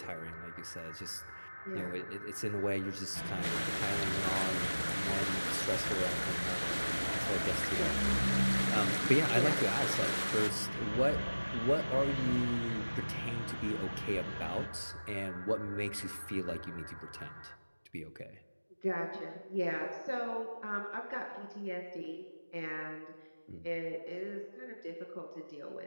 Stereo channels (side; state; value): both; inverted; correlation -1.00